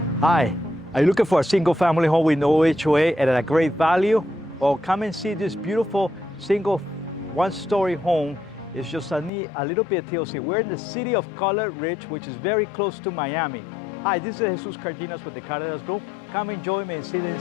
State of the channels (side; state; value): right; drops out; at 9.3 s